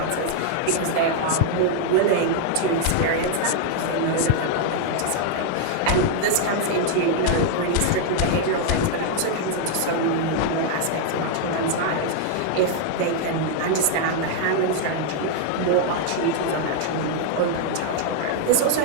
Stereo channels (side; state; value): both; different; correlation 0.00